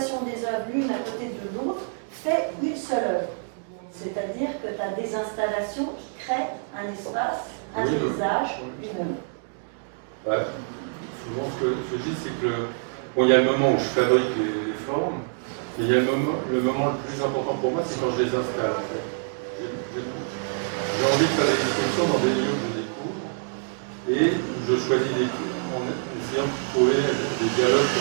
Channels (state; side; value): silent; left; 61 dB below the other